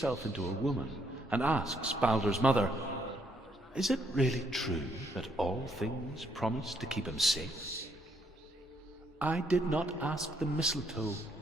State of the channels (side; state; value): both; normal; correlation 0.72